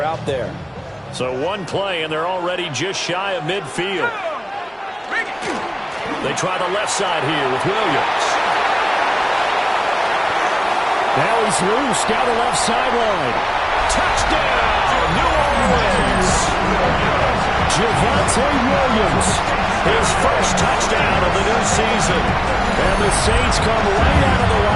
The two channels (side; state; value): both; identical; correlation 1.00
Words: out there. So one play, and they're already just shy of midfield. They try the left side here with Williams. Now he's loose down the left sideline. Touchdown, New Orleans. Javonte Williams, his first touchdown of the new season. And the Saints come right out of the